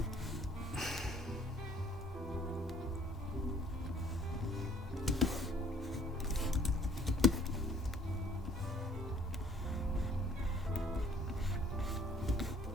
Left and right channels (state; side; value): normal; both; correlation 0.58